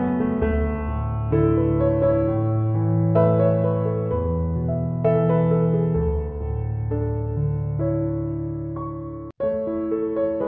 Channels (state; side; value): identical; both; correlation 1.00